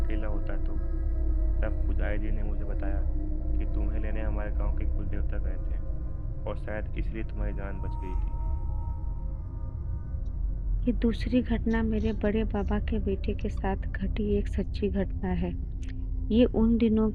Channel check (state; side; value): identical; both; correlation 1.00